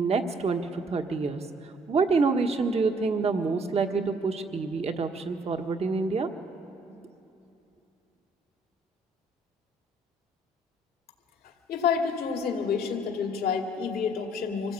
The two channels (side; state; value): both; normal; correlation 0.61